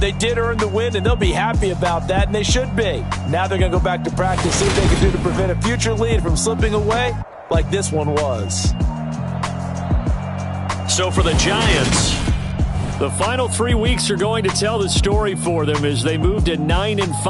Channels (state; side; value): identical; both; correlation 1.00